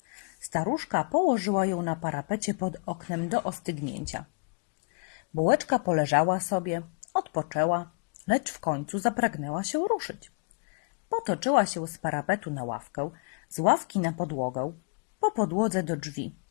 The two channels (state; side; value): quieter; right; 37.0 dB